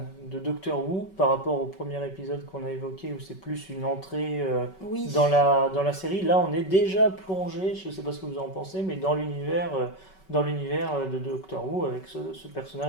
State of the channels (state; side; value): late; right; 5.3 ms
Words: de Doctor Who par rapport au premier épisode qu'on a évoqué où c'est plus une entrée Oui. dans la série. Là, on est déjà plongé, je ne sais pas ce que vous en pensez, mais dans l'univers de Doctor Who avec ce